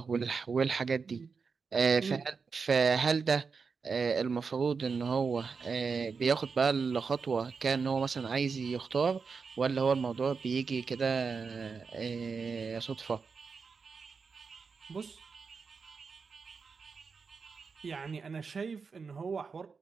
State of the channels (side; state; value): left; quieter; 5.2 dB